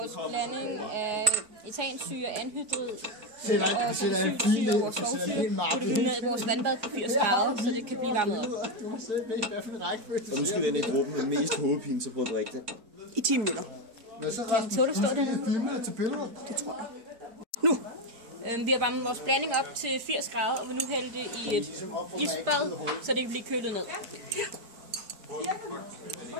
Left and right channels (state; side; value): late; left; 4.9 ms